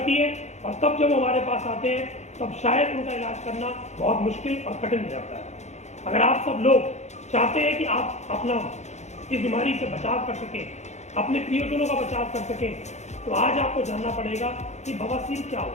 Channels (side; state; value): right; late; 0.33 ms